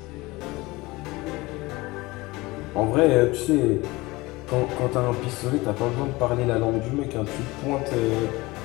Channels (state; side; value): quieter; right; 21.7 dB